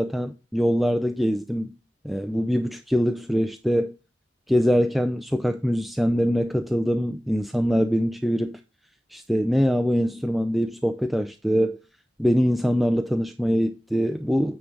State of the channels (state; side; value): normal; both; correlation 0.97